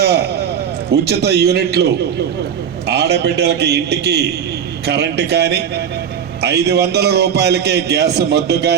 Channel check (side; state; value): left; quieter; 8.1 dB